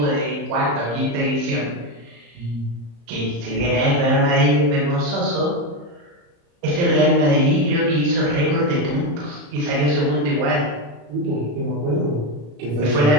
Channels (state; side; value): late; left; 35 ms